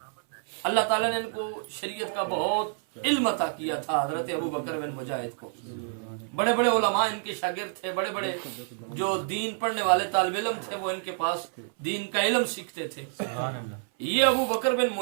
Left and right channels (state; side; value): silent; left; 59 dB below the other